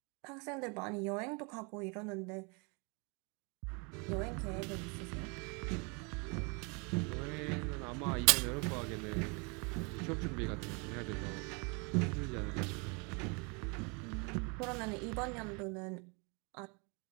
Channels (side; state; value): left; quieter; 32.2 dB